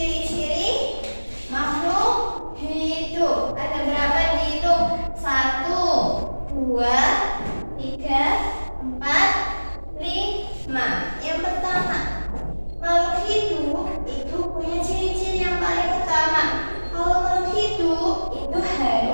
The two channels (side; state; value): both; inverted; correlation -1.00